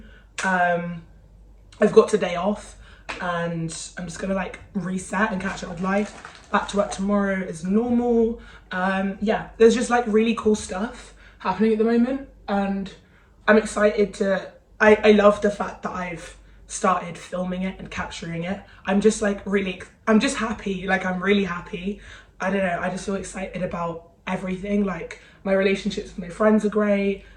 I've got today off and I'm just gonna like reset and catch up with life. Back to work tomorrow as normal. Yeah, there's just like really cool stuff happening at the moment, and I'm excited to, I love the fact that I've started filming it and capturing it. I'm just like I'm just happy, like I'm really happy. I don't know, I just feel excited about everything. Like my relationships with my friends are great,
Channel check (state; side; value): identical; both; correlation 1.00